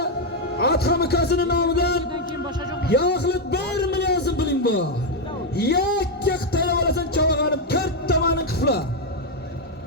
Adham ukasining nomidan Yağlık 1 milyon so'm puling bor. Yakka qitayib olasan chavag'anib 4 tomoning qifla.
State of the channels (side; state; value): both; normal; correlation 0.03